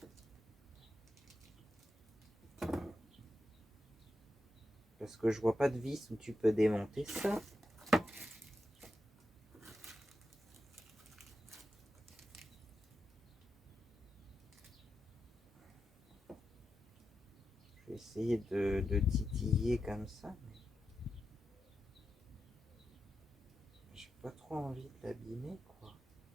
Parce que je vois pas de vis où tu peux démonter ça. Je vais essayer de titiller comme ça. J'ai pas trop envie de l'abîmer, quoi.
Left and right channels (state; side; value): normal; both; correlation 0.88